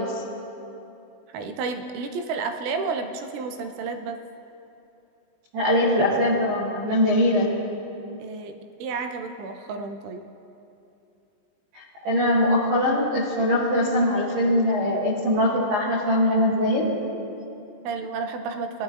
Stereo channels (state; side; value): late; left; 20 ms